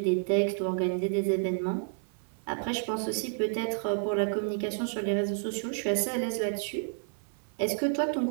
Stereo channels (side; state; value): left; silent; 56 dB below the other